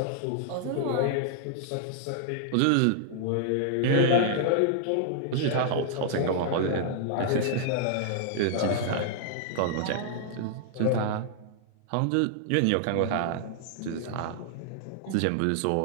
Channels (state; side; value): different; both; correlation -0.01